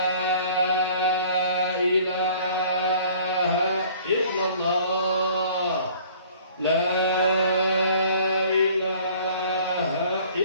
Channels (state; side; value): inverted; both; correlation -0.53